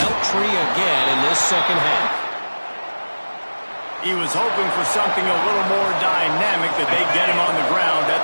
tree again in this second half. He was hoping for something a little more dynamic, that they get him on the ground at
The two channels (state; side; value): inverted; both; correlation -1.00